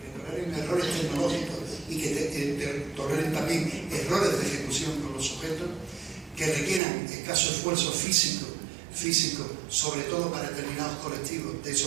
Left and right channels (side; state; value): left; drops out; at 6.8 s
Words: que toleren errores tecnológicos y que toleren también errores de ejecución con los sujetos, que requieran escaso esfuerzo físico, sobre todo para determinados colectivos de